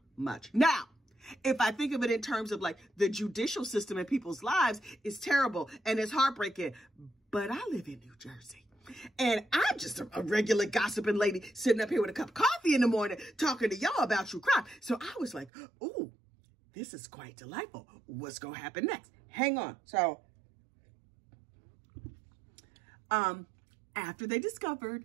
much. Now, if I think of it in terms of like the judicial system in people's lives, it's terrible and it's heartbreaking. But I live in New Jersey. And I'm just a regular gossiping lady sitting up here with a cup of coffee in the morning talking to y'all about true crime. So I was like, ooh, this is quite delightful. What's going to happen next? Hang on. So, after they discovered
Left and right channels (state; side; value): drops out; left; at 15.5 s